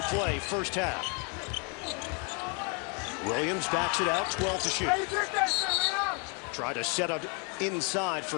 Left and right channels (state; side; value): quieter; right; 35.8 dB